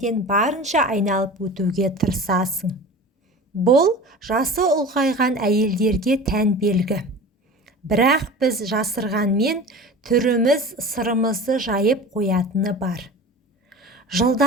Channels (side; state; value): both; normal; correlation 0.36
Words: барынша айналып өтуге тырысасың. Бұл жасы ұлғайған әйелдерге тән белгі. Бірақ біз жасырғанмен түріміз сырымызды жайып қоятыны бар.